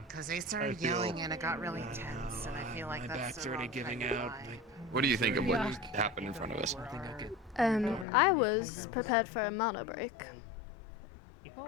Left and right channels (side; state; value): right; drops out; at 8.1 s